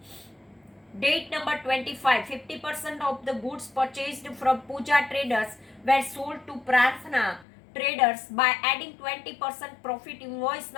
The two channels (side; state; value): right; drops out; at 7.5 s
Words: Date number 25, 50% of the goods purchased from Puja Traders were sold to Prarthana Traders by adding 20% profit, invoice